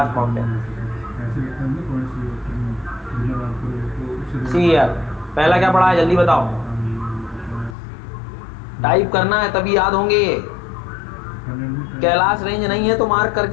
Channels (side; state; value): right; drops out; at 7.8 s